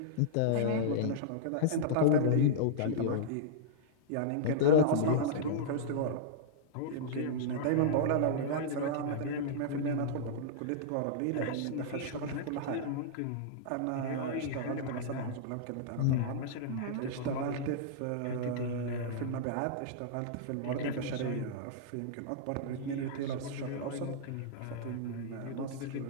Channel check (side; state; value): both; different; correlation -0.03